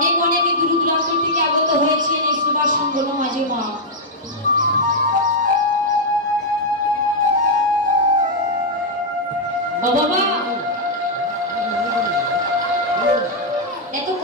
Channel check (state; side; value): normal; both; correlation -0.04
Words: অনেক দূর দূরান্ত থেকে আগত হয়েছেন এই সুভাষ সংগঠন মাঝে মা। বাবা এত